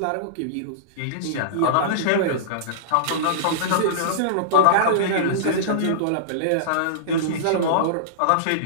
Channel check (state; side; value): different; both; correlation -0.03